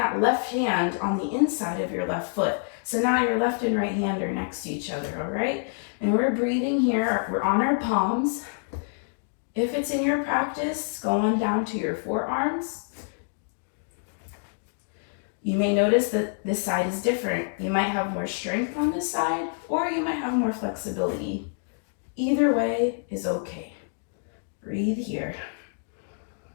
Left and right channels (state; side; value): silent; right; digital silence